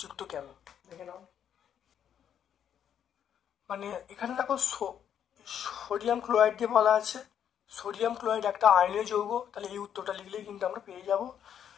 কেন, দেখে নাও। মানে এখানে দেখো, সোডিয়াম ক্লোরাইড দিয়ে বলা আছে, সোডিয়াম ক্লোরাইড একটা আয়নীয় যৌগ, তাহলে এই উত্তরটা লিখলেই কিন্তু আমরা পেয়ে যাব।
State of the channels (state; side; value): quieter; right; 9.1 dB